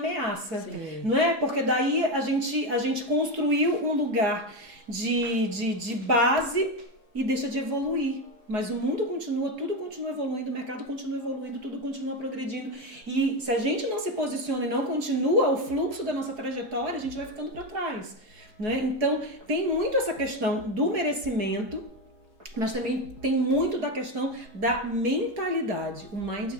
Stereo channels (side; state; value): left; late; 4.8 ms